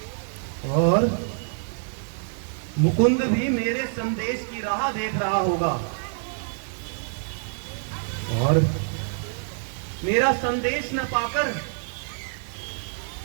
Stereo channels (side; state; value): left; silent; 56 dB below the other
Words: और मुकुंद भी मेरे संदेश की राह देख रहा होगा और मेरा संदेश न पाकर